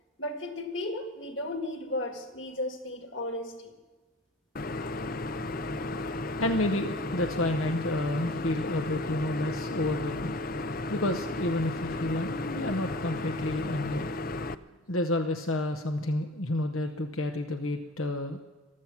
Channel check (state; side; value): normal; both; correlation 0.41